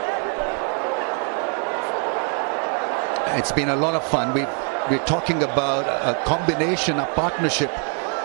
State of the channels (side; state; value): left; quieter; 39.8 dB